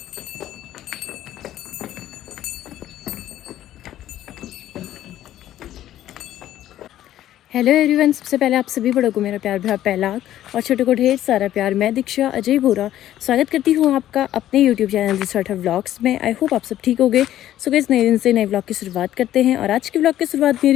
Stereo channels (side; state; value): right; quieter; 12.7 dB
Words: हेलो एवरीवन, सबसे पहले आप सभी बड़ों को मेरा प्यार भरा पहलाग और छोटों को ढेर सारा प्यार। मैं दीक्षा अजय बोरा स्वागत करती हूँ आपका अपने यूट्यूब चैनल रिसोर्ट व्लॉग्स में। आई होप आप सब ठीक हो गए। सो गाइस, नए दिन से नए व्लॉग की शुरुआत करते हैं और आज के व्लॉग की शुरुआत